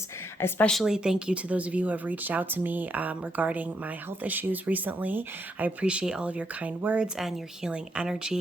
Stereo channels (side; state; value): both; normal; correlation 0.78